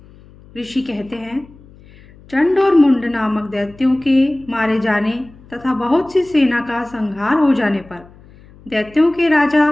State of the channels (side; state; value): left; noise; hum, 24 dB below the sound